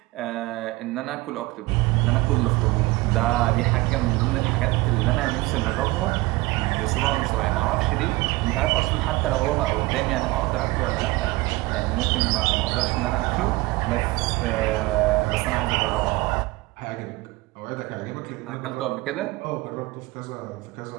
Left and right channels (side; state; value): left; quieter; 20.9 dB